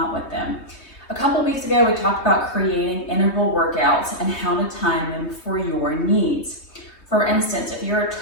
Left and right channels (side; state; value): right; late; 3.3 ms